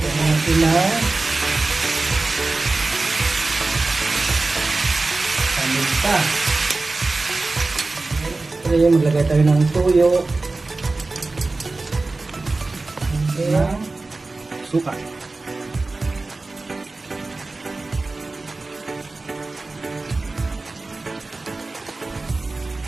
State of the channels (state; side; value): quieter; left; 3.4 dB